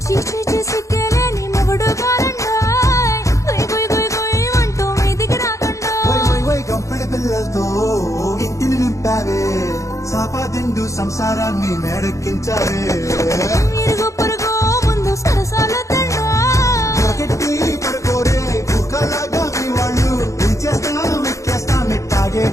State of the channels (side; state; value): right; late; 0.15 ms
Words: చీచీ చేసి కేలేని మొగుడు కారండాయ్ గుయ్ గుయ్ గుయ్ గుయ్ అంటూ మీదికి రాకండాయ్ గంపెడి పిల్లలతో ఇంటిని నింపావే సాపాదిండు సంసారాన్ని మేడెక్కించావే ఇరుగు పొరుగు ముందు సరసాల గట్టి పడుకోరే కుక్కలాగా మీ వాళ్ళు ఇచ్చేస్తాం ఎక్కేస్తాం ఎట్టాగే